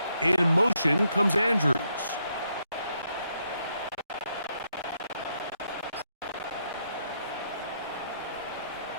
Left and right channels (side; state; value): both; inverted; correlation -0.77